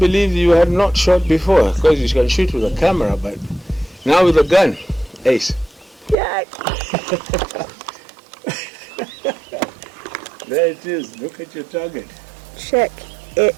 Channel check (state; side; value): drops out; left; at 6.2 s